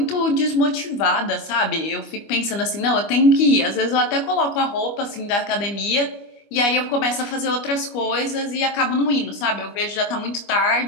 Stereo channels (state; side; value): late; right; 25 ms